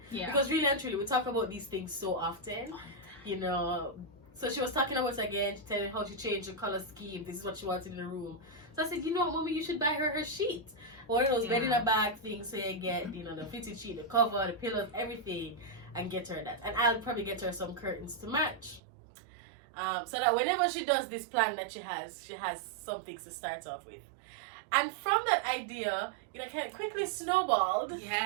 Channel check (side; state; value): left; drops out; at 18.8 s